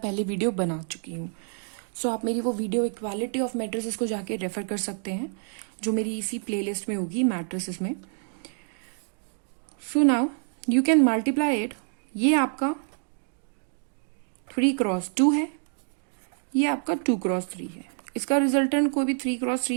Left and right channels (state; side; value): silent; left; 60 dB below the other